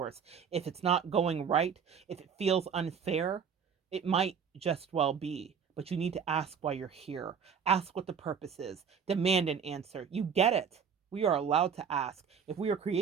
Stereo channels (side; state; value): left; quieter; 6.9 dB